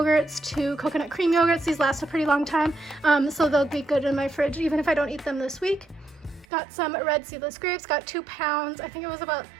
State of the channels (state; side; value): drops out; left; at 6.5 s